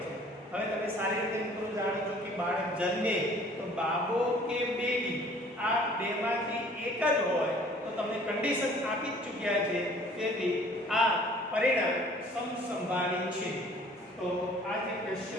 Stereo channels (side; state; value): both; normal; correlation 0.53